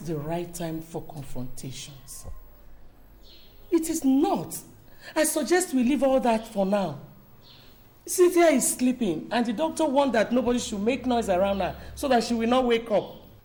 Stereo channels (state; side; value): identical; both; correlation 1.00